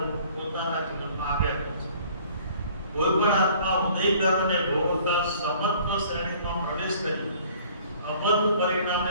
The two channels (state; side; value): inverted; both; correlation -0.54